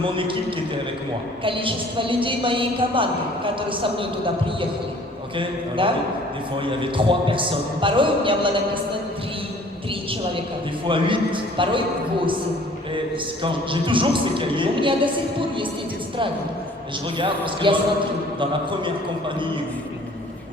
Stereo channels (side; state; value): both; normal; correlation 0.53